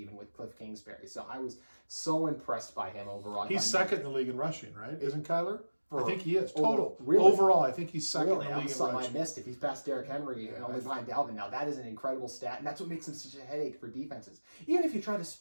with Cliff Kingsbury. So I was so impressed by him overall. He's second in the league in rushing, right? Isn't Kyler? I think he is. Really? Overall, I think he's second in the league in something rushing. I missed. If he's past Derrick Henry and only behind Dalvin now, that is an incredible stat, and that's what makes him such a headache for defenses. Even if you try to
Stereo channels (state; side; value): inverted; both; correlation -1.00